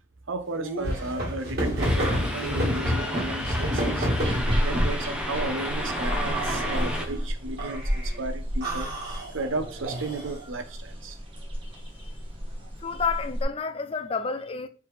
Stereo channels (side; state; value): both; normal; correlation 0.54